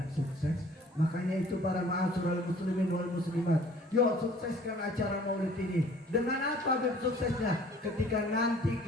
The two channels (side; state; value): both; normal; correlation 0.53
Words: sukses. Makanya itu para ma'asyiral muslimin wal muslimat, yuk sukseskan acara Maulid ini. Dengan apa suksesnya? Ketika nanti